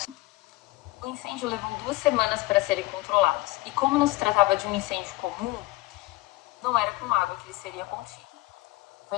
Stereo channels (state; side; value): quieter; right; 20.4 dB